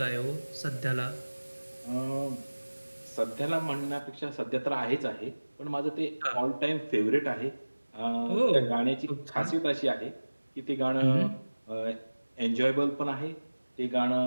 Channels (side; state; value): both; inverted; correlation -1.00